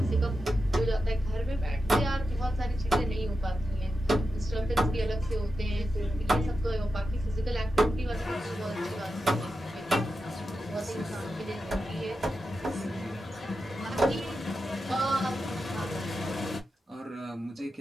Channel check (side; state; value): both; normal; correlation 0.90